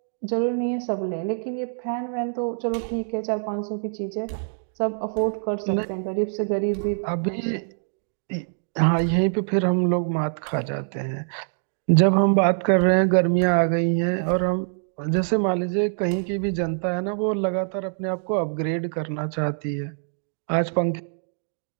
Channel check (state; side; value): silent; left; digital silence